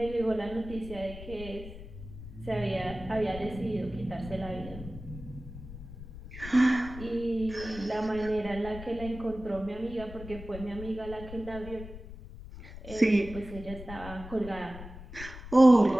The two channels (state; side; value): noise; left; rumble, 13 dB below the sound